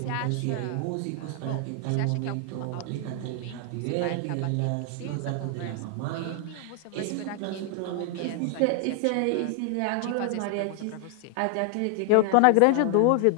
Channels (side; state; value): both; different; correlation 0.00